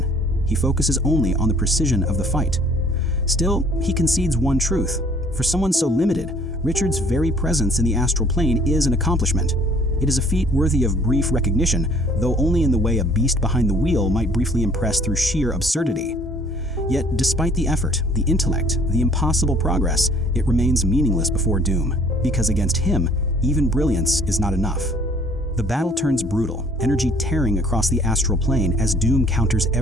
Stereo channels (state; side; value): normal; both; correlation 0.56